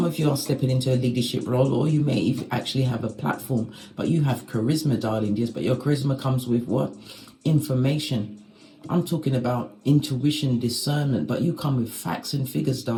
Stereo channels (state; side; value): identical; both; correlation 1.00